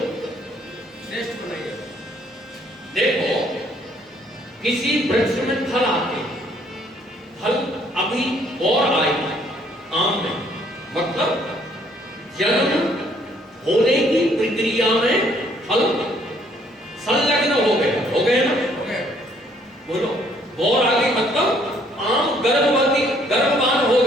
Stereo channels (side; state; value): both; normal; correlation 0.64